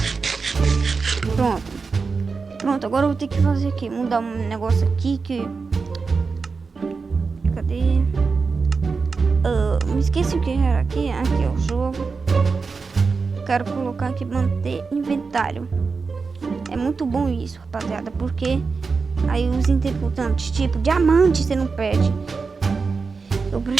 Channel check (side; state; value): left; quieter; 4.7 dB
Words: Pronto. Pronto, agora eu vou ter que fazer aqui. Mudar um negócio aqui que... Cadê? Me esqueci o que era aqui. Aqui é o jogo. Quero colocar aqui manter inventário. É muito bom isso, rapaziada, porque aí os interputantes, tipo diamante, você não perde. Eu